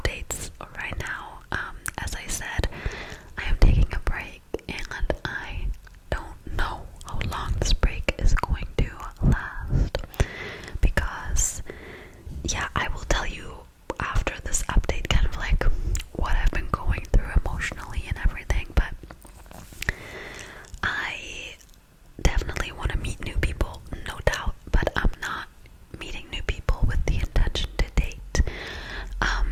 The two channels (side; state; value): both; identical; correlation 1.00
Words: right now. As I said, I am taking a break, and I don't know how long this break is going to last, because yeah, I will tell you after this update kind of like what I've been going through emotionally and everything. But I definitely want to meet new people, no doubt, but I'm not meeting new people with the intention to date.